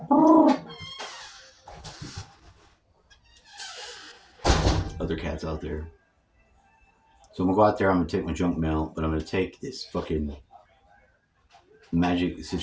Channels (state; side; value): identical; both; correlation 1.00